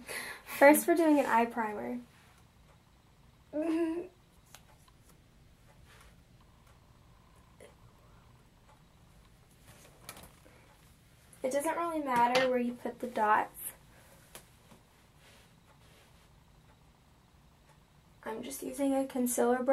First, we're doing an eye primer. It doesn't really matter where you put the dots. I'm just using a concealer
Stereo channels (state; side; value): identical; both; correlation 1.00